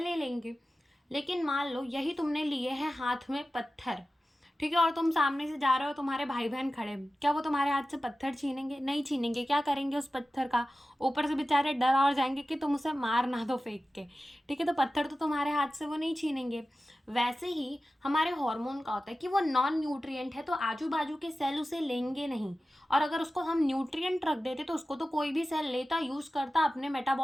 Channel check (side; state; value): both; normal; correlation 0.95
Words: ले लेंगे। लेकिन मान लो यही तुमने लिए हैं हाथ में पत्थर, ठीक है, और तुम सामने से जा रहे हो, तुम्हारे भाई बहन खड़े, क्या वो तुम्हारे हाथ से पत्थर छीनेंगे? नहीं छीनेंगे। क्या करेंगे उस पत्थर का, ऊपर से बेचारे डर और जाएंगे कि तुम उसे मार ना दो फेंक के, ठीक है, तो पत्थर तो तुम्हारे हाथ से वो नहीं छीनेंगे। वैसे ही हमारे हार्मोन का होता है कि वो नॉन न्यूट्रिएंट है, तो आजू बाजू के सेल उसे लेंगे नहीं, और अगर उसको हम न्यूट्रिएंट रख देते तो उसको तो कोई भी सेल लेता, यूज करता अपने